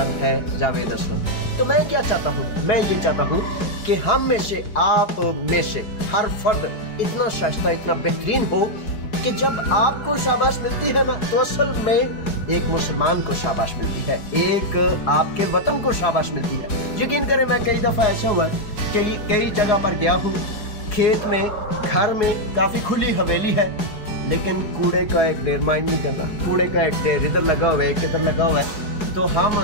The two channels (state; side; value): late; right; 4.7 ms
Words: है जावेद असलम। तो मैं क्या चाहता हूँ, मैं ये चाहता हूँ कि हम में से, आप में से हर फर्द इतना शाइस्ता, इतना बेहतरीन हो कि जब आपको शाबाश मिलती है ना, तो असल में एक मुसलमान को शाबाश मिलती है, एक आपके वतन को शाबाश मिलती है। यकीन करें, मैं कई दफ़ा ऐसा हुआ है कि कई जगह पर गया हूँ, खेत में, घर में काफ़ी खुली हवेली है, लेकिन कूड़े का एक ढेर माइंड नहीं करना, कूड़े का एक ढेर इधर लगा हुआ है, एक इधर लगा हुआ है, तो हम